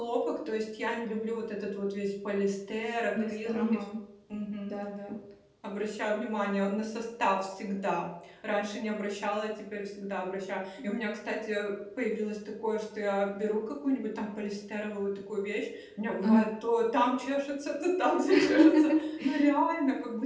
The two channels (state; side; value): identical; both; correlation 1.00